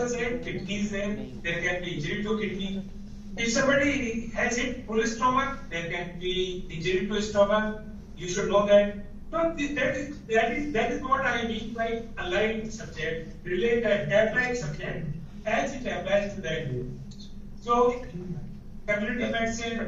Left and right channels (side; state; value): both; identical; correlation 1.00